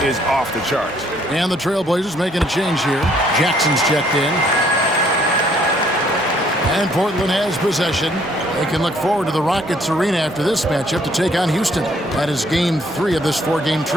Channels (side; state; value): both; normal; correlation 0.64